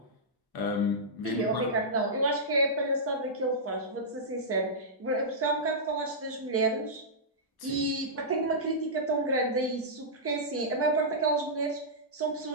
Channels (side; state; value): both; normal; correlation -0.13